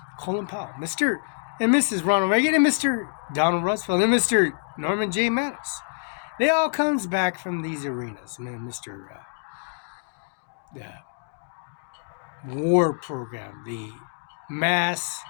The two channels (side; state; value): right; silent; digital silence